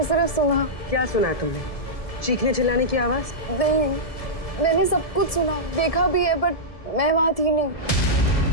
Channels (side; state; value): right; late; 1.7 ms